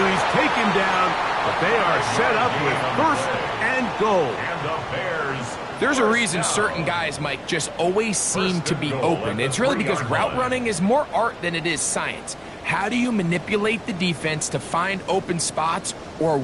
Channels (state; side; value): identical; both; correlation 1.00